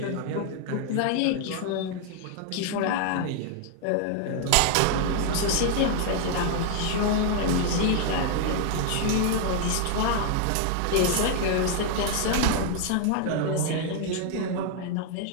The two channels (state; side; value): different; both; correlation 0.00